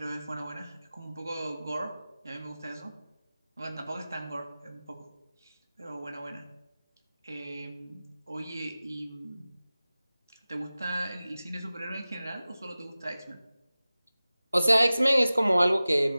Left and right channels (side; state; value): both; inverted; correlation -0.97